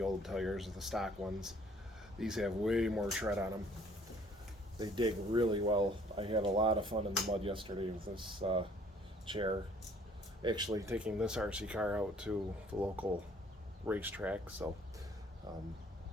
tires, the stock ones. These have way more tread on them. They dig really well. I had a lot of fun in the mud yesterday with this chair. Actually taking this RC car out to the local racetrack, so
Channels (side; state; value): both; normal; correlation 0.59